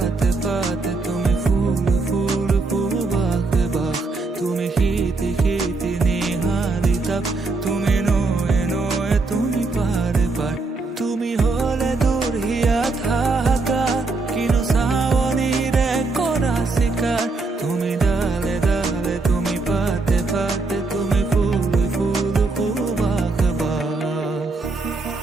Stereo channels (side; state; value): left; quieter; 3.7 dB